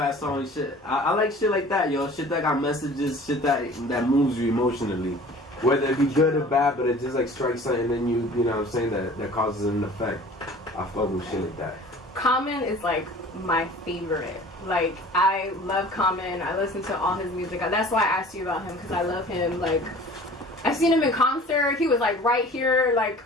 song and shit. I like shit like that, yo. Shit that got messages, shit that moves you emotionally. Whether it be good or bad, but it just like strikes something and you know what I'm saying, that causes an effect. I fuck with shit like that. Common is like my favorite. Like, I love Common. I listen to all his music. That's why I asked you about him, because I love him. Like, I've seen him in concert. He was like right here. Like,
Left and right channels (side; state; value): both; normal; correlation 0.45